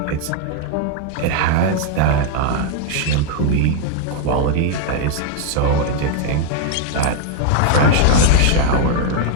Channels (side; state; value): both; different; correlation 0.00